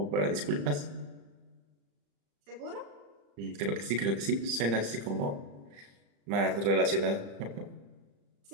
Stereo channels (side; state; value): left; late; 35 ms